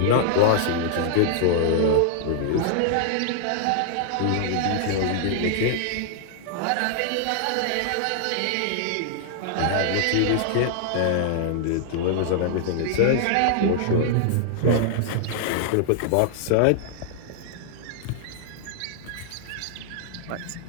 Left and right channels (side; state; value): both; different; correlation -0.01